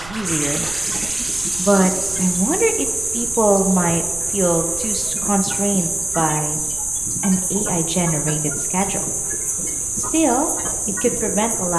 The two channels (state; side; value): noise; right; rumble, 15 dB below the sound